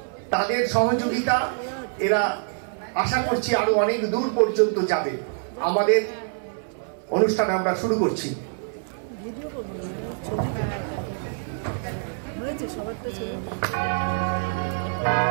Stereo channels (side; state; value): left; silent; 60 dB below the other